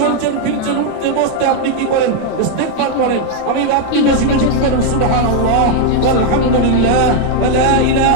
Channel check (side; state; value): both; different; correlation 0.00